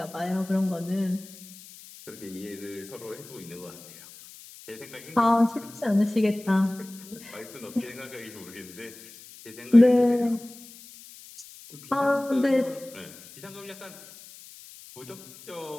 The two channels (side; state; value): left; noise; hiss, 19 dB below the sound